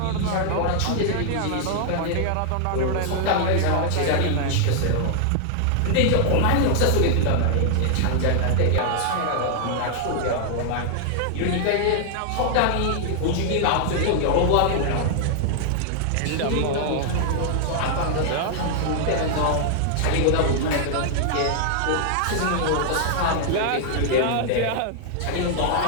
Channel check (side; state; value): both; different; correlation -0.01